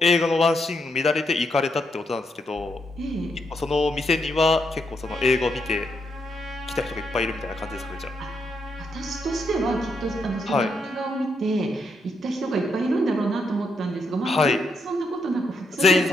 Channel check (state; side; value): normal; both; correlation 0.79